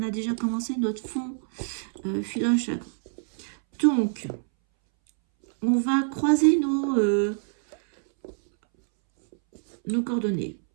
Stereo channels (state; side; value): silent; left; 61 dB below the other